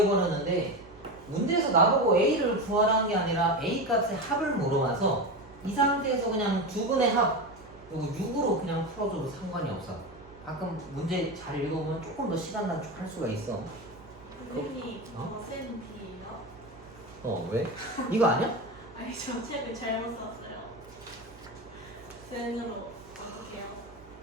문제에서 나보고 A를 구하라는 게 아니라 A 값의 합을 물어봐서 이 상태에서 그냥 두 분의 합, 이거 6으로 그냥 풀어줘도 상관이 없어. 가끔 문제 잘 읽어보면 조금 더 시간 단축할 수가 있어. 선생님, 어? 저 쌤이에요? 왜? 이거 아니야? 아니, 저 책을 잘못 샀어요. 쌤으로 어떻게 해요?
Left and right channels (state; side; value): noise; right; hum, 22 dB below the sound